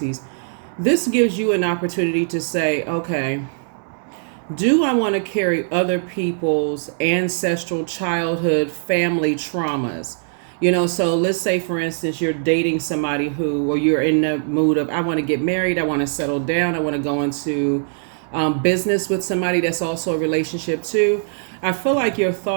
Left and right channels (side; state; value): left; silent; digital silence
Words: This gives you an opportunity to say, okay, do I want to carry other people's ancestral childhood family traumas? So let's say, for instance, you're dating somebody who, or you're in the mood of, I want to get married, I want to settle down, I want to go into business with somebody that's also a relationship too. I feel like your